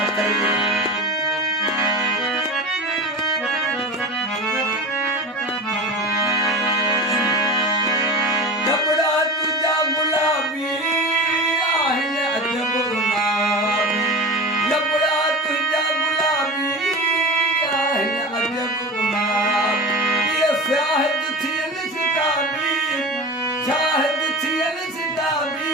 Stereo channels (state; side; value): normal; both; correlation 0.30